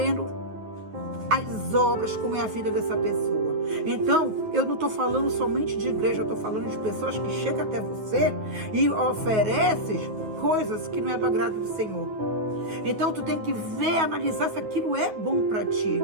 as obras, como é a vida dessa pessoa. Então, eu não estou falando somente de igreja, eu estou falando de pessoas que chegam até você e oferecem coisas que não é do agrado do Senhor. Então, tu tem que ver, analisar se aquilo é bom para ti.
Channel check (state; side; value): late; left; 9.5 ms